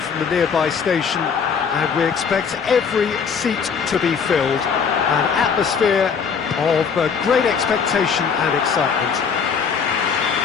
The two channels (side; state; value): right; quieter; 6.3 dB